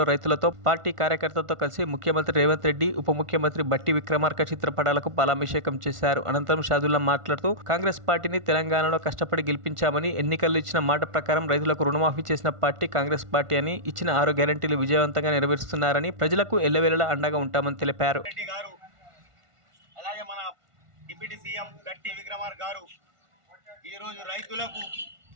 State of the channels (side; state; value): left; late; 1.5 ms